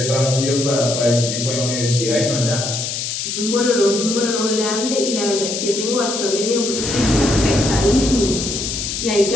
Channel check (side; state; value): left; noise; hiss, 4 dB below the sound